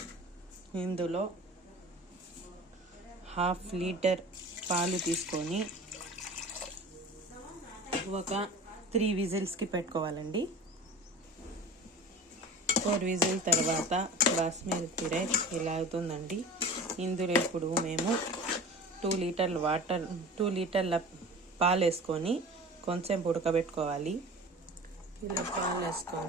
ఇందులో 1/2 లీటర్ పాలు తీసుకొని ఒక 3 విజిల్స్కి పెట్టుకోవాలండి. 4 విజిల్ తర్వాత బాస్మతి రైస్ ఇలా అవుతుందండి. ఇందులో ఇప్పుడు మేము 2 లీటర్ల పాలు వేసుకొని కొంచెం ఉడకబెట్టుకోవాలి. ఇలా పాలు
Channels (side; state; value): both; normal; correlation 0.37